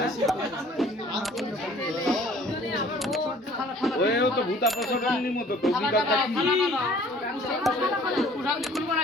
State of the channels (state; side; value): normal; both; correlation 0.53